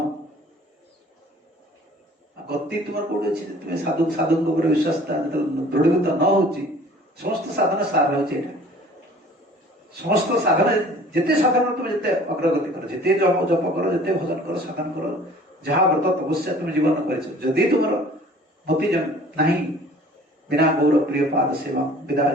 गति तुम कौट अच्छी तुम्हें साधु साधु विश्वास दृढ़ीभूत न हो समस्त साधन सार हो समस्त साधन जिते साधन तुम जिते अग्रगति कर जिते जप कर जिते भजन कर साधन कर जहाँ व्रत तपस्या तुम जीवन कर तुम मति नहीं बिना गौर प्रिय पाद सेवा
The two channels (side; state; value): both; normal; correlation 0.49